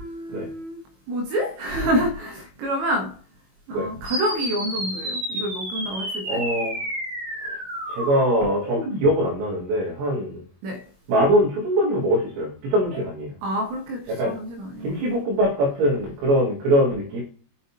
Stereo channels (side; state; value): left; late; 21 ms